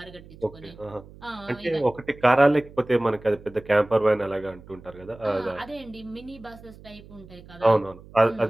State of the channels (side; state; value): right; noise; hum, 20 dB below the sound